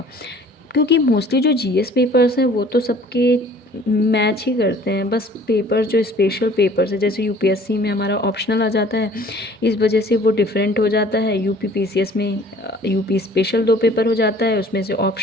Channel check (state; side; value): normal; both; correlation 0.52